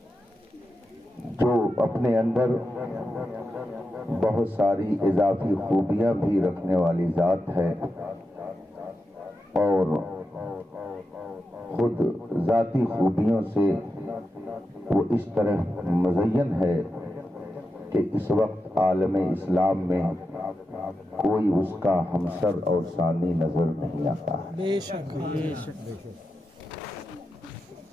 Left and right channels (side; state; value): both; normal; correlation 0.89